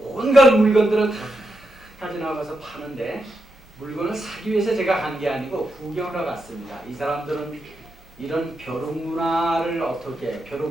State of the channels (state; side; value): normal; both; correlation 0.85